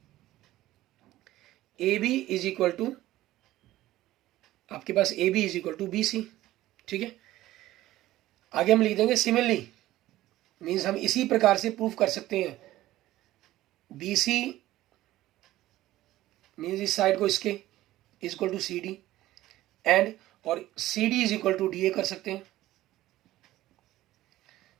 AB इज इक्वल टू आपके पास AB is equal to BC। ठीक है, आगे हम लिख देंगे सिमिलरली, मीन्स हम इसी प्रकार से प्रूफ कर सकते हैं BC मीन्स इस साइड को इसके is equal to CD and और CD is equal to DA कर सकते हैं।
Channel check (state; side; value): quieter; left; 15.5 dB